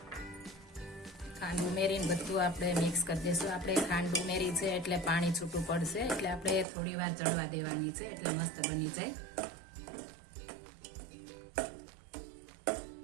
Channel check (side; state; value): left; drops out; at 6.7 s